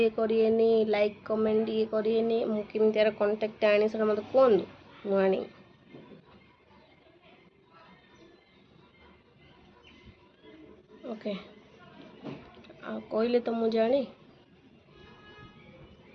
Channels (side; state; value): both; identical; correlation 1.00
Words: କରିବେନି, ଲାଇକ୍ କମେଣ୍ଟ ଇଏ କରିବେନି। ମୁଁ କେମିତି ଆର କଣ୍ଟାକ୍ଟ ଆଣି ସେଟା ମୋତେ କୁହନ୍ତୁ, ମୁଁ ଆଣି। ଓକେ, ଆଉ କହିଲେ ତ ମୁଁ ଜାଣି।